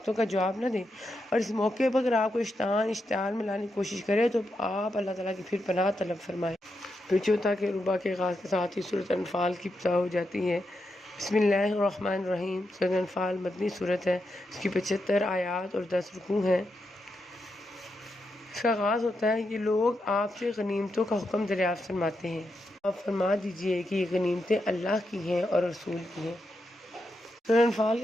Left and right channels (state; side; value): normal; both; correlation 0.85